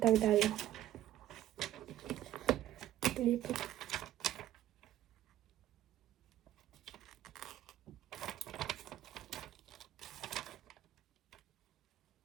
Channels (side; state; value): left; quieter; 13.1 dB